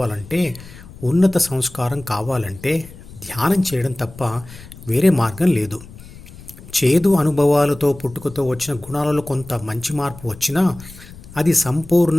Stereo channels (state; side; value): noise; left; rumble, 18 dB below the sound